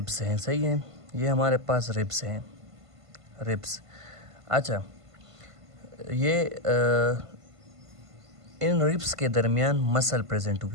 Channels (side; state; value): left; late; 1.5 ms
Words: हैं, सही है, ये हमारे पास रिब्स हैं, रिब्स। अच्छा, ये इन रिब्स के दरमियान मसल प्रेजेंट